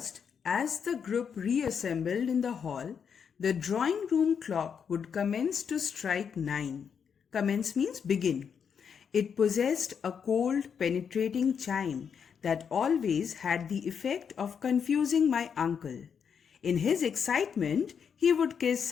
as the group reassembled in the hall, the drawing room clock would commence to strike 9. Commence means begin. It possessed a cold, penetrating chime that always had the effect of confusing my uncle. In his excitement, he would kiss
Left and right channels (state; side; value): quieter; right; 7.0 dB